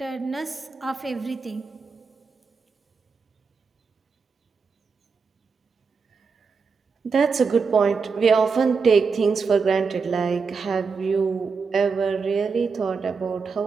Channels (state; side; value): quieter; left; 5.0 dB